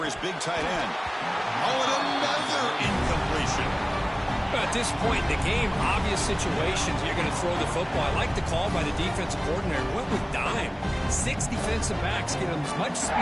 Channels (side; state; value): both; identical; correlation 1.00